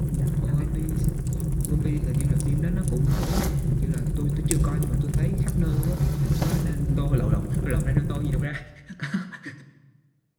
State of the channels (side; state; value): both; identical; correlation 1.00